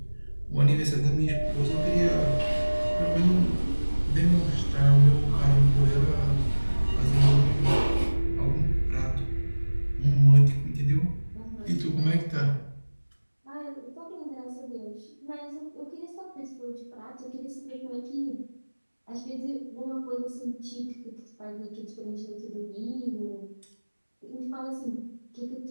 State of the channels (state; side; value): inverted; both; correlation -1.00